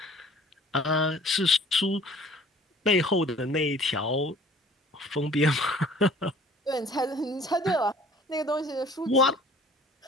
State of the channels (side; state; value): both; normal; correlation 0.52